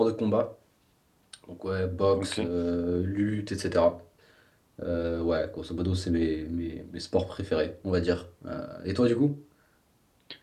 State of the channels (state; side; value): identical; both; correlation 1.00